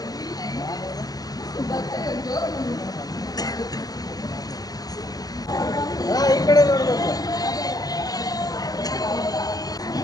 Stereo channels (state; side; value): late; right; 0.18 ms